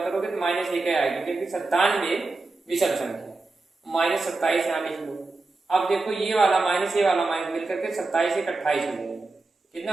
तो -1 आएगी, क्योंकि 97 विषम संख्या, -27 यहाँ लिख लो। अब देखो ये वाला माइनस ये वाला माइनस मिलकर के 27 1 28 हो जाएगा, कितना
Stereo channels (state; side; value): quieter; left; 3.4 dB